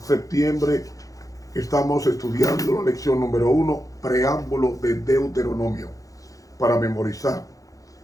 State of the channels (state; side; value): late; right; 0.17 ms